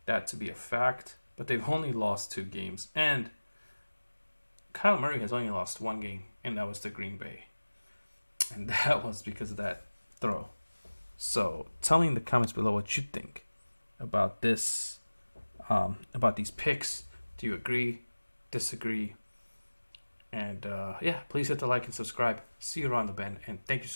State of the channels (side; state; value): both; inverted; correlation -1.00